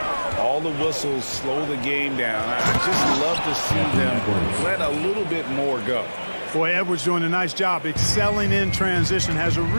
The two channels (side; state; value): both; inverted; correlation -1.00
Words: All the whistles slow the game down. I just love to see them let a little bit more go. Boy, Edwards doing a nice job excelling in transition, has a